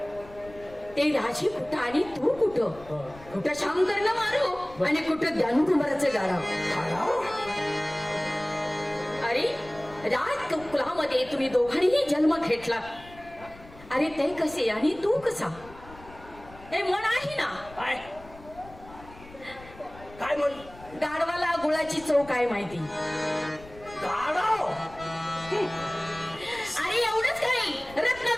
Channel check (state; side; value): noise; left; rumble, 20 dB below the sound